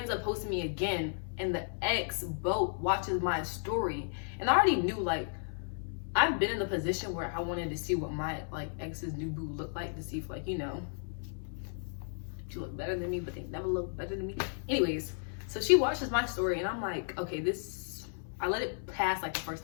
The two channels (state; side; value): silent; right; 55 dB below the other